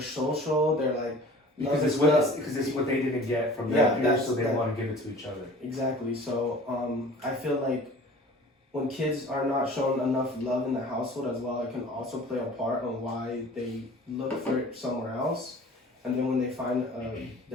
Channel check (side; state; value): both; normal; correlation 0.45